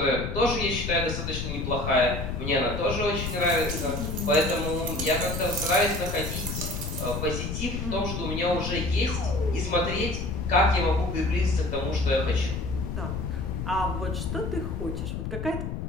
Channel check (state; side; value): noise; left; rumble, 4 dB below the sound